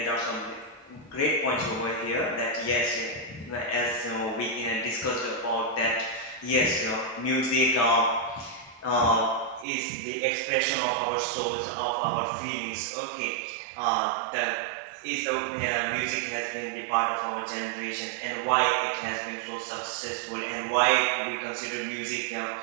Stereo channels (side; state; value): left; drops out; at 9.7 s